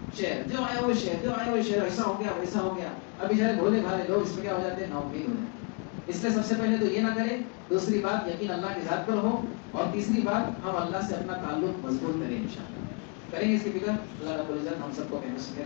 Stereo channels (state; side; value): quieter; right; 35.6 dB